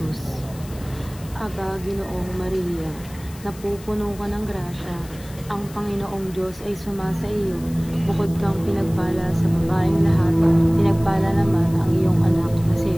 Aba, Ginoong Maria, napupuno ka ng grasya, ang Panginoong Diyos ay sumasa iyo. Bukod kang pinagpala sa babaeng lahat, pinagpala naman ang iyong anak na si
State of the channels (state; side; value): noise; left; hiss, 20 dB below the sound